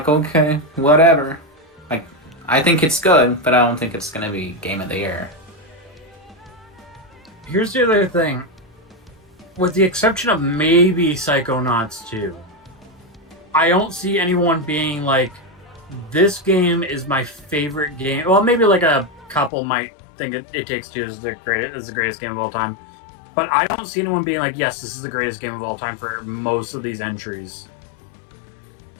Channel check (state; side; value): drops out; right; at 19.5 s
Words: okay, whatever. Like, I think it's good, but I don't think it's gonna be Game of the Year. Here's the other thing. With the exception of maybe Psychonauts 2, I don't see anyone being like, this game is my favorite game. Well, maybe like a couple might think It Takes Two is the greatest game of all time. But I don't see anyone being like, yes, this is the greatest game of all time for most of these entries.